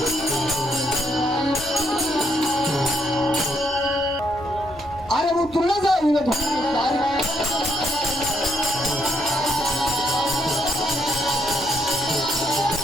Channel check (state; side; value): noise; left; rumble, 20 dB below the sound